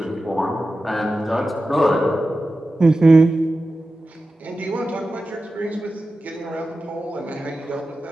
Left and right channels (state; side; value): normal; both; correlation 0.93